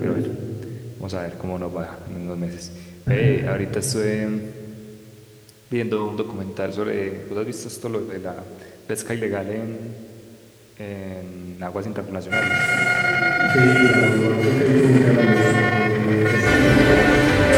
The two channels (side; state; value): both; identical; correlation 1.00